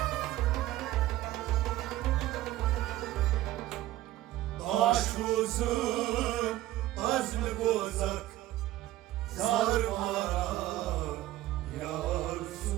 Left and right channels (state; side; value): quieter; left; 15.3 dB